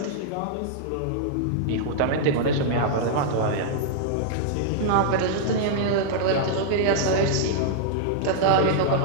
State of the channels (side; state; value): both; different; correlation -0.01